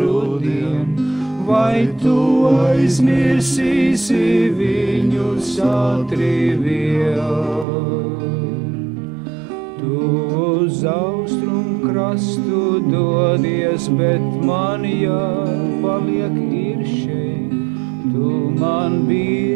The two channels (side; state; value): left; drops out; at 7.7 s